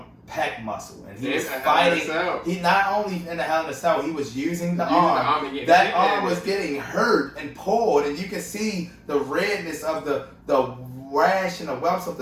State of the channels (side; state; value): both; identical; correlation 1.00